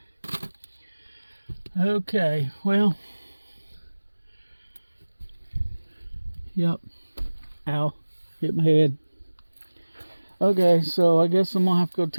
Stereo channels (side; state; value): both; inverted; correlation -1.00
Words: Okay. Well. Yep. Ow. Hit my head. Okay, so I guess I'm going to have to go to